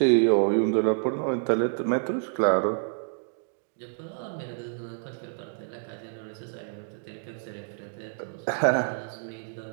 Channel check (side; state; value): left; silent; digital silence